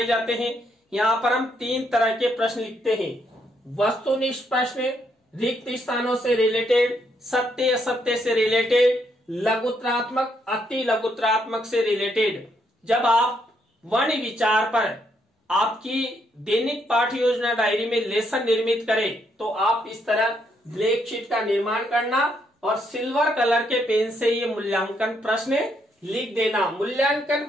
जाते हैं। यहाँ पर हम 3 तरह के प्रश्न लिखते हैं। वस्तुनिष्ठ प्रश्न, रिक्त स्थानों से रिलेटेड, सत्य असत्य से रिलेटेड, लघुत्रात्मक अति लघुत्रात्मक से रिलेटेड। जब आप वर्ण विचार पर आपकी दैनिक पाठ्य योजना डायरी में लेसन निर्मित करें तो आप इस तरह ब्लैक शीट का निर्माण करना और सिल्वर कलर के पेन से ये मूल्यांकन प्रश्न लिख देना। मूल्यांकन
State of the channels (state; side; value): normal; both; correlation 0.75